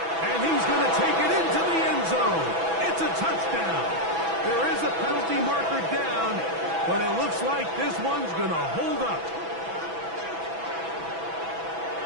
he's going to take it into the end zone. It's a touchdown. There is a penalty marker down, but it looks like this one's going to hold up.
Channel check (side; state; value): left; late; 6.1 ms